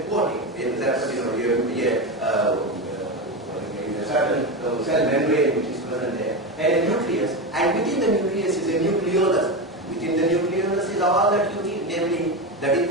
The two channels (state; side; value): normal; both; correlation 0.17